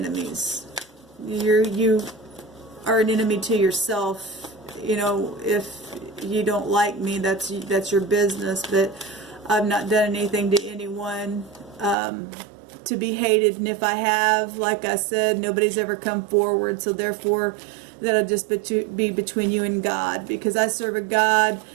You are an enemy to yourself. You know, if you don't like me, that's your business. But I've not done anything to anyone to be hated. And if I have, like I said, nobody's ever come forward. So therefore, that'll just be between you and God. Because I serve a God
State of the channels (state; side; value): drops out; left; at 12.0 s